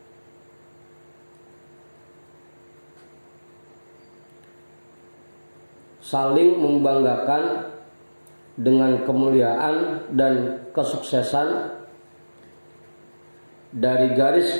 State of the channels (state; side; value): inverted; both; correlation -1.00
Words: Saling membanggakan dengan kemuliaan dan kesuksesan dari garis